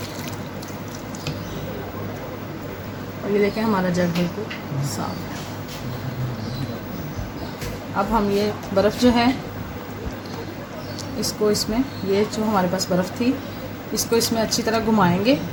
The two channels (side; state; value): both; identical; correlation 1.00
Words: और ये देखें हमारा जग बिल्कुल साफ है। अब हम ये बर्फ़ जो है इसको इसमें ये जो हमारे पास बर्फ़ थी इसको इसमें अच्छी तरह घुमाएंगे